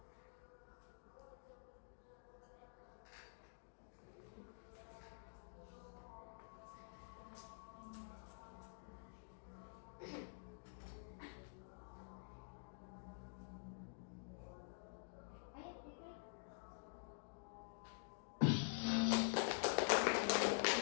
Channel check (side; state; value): right; silent; digital silence